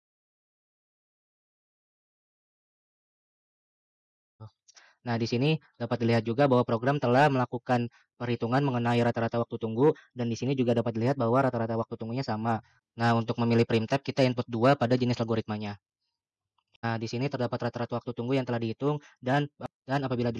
Nah, di sini dapat dilihat juga bahwa program telah melakukan perhitungan mengenai rata-rata waktu tunggu, dan di sini juga dapat dilihat bahwa rata-rata waktu tunggunya sama. Nah, untuk memilih primtype kita input 2 pada jenis algoritmanya. Nah, di sini terdapat rata-rata waktu tunggu yang telah dihitung dan apabila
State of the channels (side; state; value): both; identical; correlation 1.00